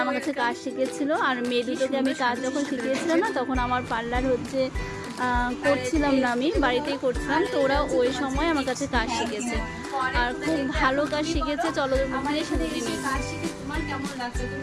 আমার কাছে কাজ শিখেছিল। আর মেয়ে দুটোকে আমি কাজ যখন শিখিয়েছিলাম না, তখন আমার পার্লার হচ্ছে করছিলাম না, আমি বাড়িতেই করছিলাম। তো ওরা ওই সময় আমার কাছে কাজ শিখেছে আর খুব ভালো কাজ শিখেছে। চলো দিয়ে শুনে নিই। তোমার কেমন লাগছে? তুমি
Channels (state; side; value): identical; both; correlation 1.00